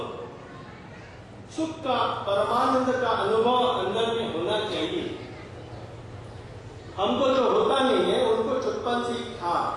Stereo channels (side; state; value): both; identical; correlation 1.00